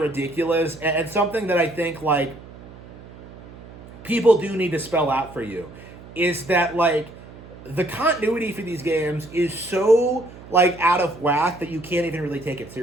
and something that I think like people do need to spell out for you is that like the continuity for these games is so like out of whack that you can't even really take it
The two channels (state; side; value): noise; right; hum, 18 dB below the sound